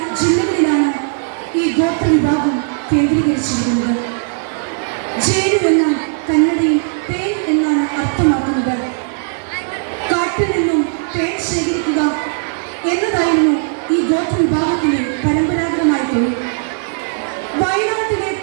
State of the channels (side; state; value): left; silent; 68 dB below the other